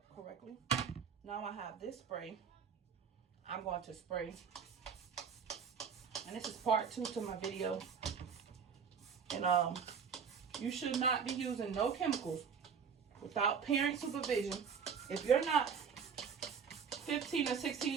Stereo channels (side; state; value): left; quieter; 6.6 dB